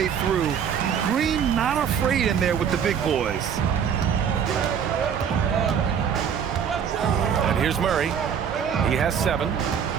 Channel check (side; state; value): left; quieter; 7.8 dB